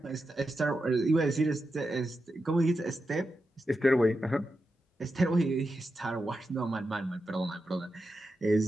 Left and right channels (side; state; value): both; normal; correlation 0.89